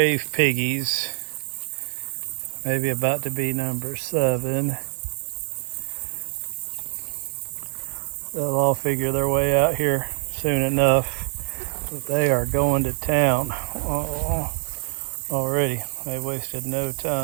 piggies, maybe about to be number 7. They'll all figure their way out here soon enough, but they are going to town already. They wasted no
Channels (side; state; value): left; silent; digital silence